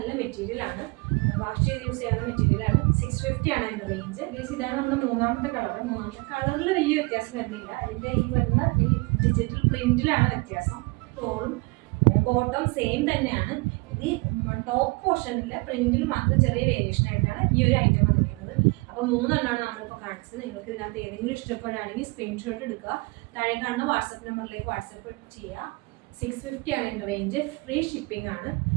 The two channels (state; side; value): quieter; left; 26.6 dB